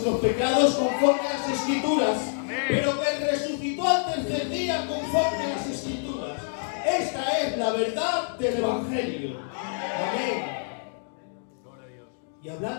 pecados conforme a las Escrituras, pero que resucitó al tercer día conforme a las Escrituras. Esta es la verdad del evangelio. Amén. Y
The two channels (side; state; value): right; silent; digital silence